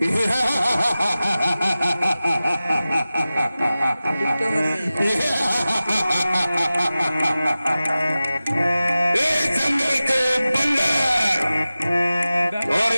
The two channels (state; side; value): inverted; both; correlation -0.96